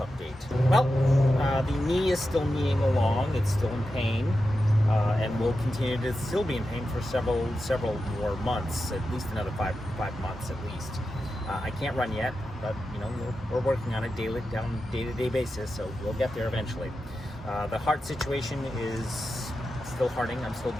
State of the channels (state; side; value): normal; both; correlation 0.90